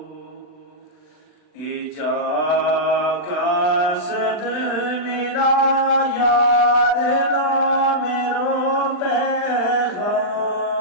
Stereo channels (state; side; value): late; right; 39 ms